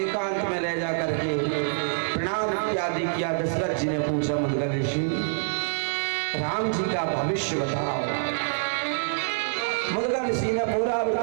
में ले जा करके प्रणाम इत्यादि किया। दशरथ जी ने पूछा मुग्दल ऋषि राम जी का भविष्य बताओ। मुद्गल ऋषि ने पूरा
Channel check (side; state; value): left; silent; 61 dB below the other